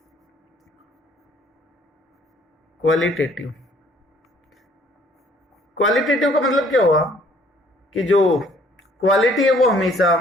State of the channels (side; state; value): both; normal; correlation 0.60